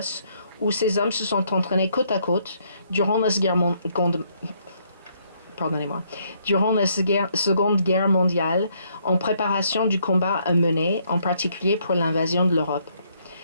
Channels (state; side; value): inverted; both; correlation -0.70